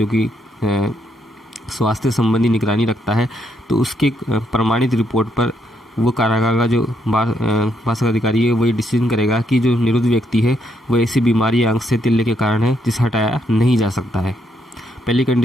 की स्वास्थ्य संबंधी निगरानी रखता है, तो उसके प्रमाणित रिपोर्ट पर वो कारागार का जो बारसतक अधिकारी है वही डिसीजन करेगा कि जो निरुद्ध व्यक्ति है वो ऐसी बीमारी या अंग से तिल्ले के कारण है जिसे हटाया नहीं जा सकता है। पहली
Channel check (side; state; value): both; normal; correlation 0.75